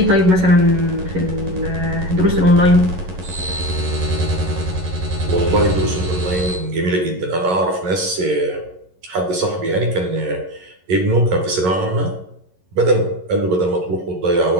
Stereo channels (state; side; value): late; left; 11 ms